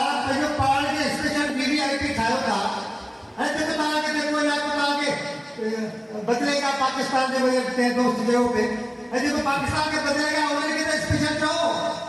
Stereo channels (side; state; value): both; identical; correlation 1.00